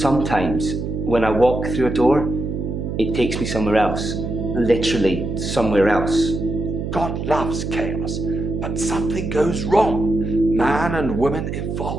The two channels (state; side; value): noise; right; hum, 4 dB below the sound